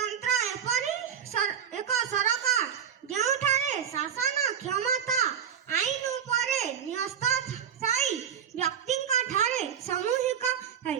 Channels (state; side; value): quieter; left; 8.3 dB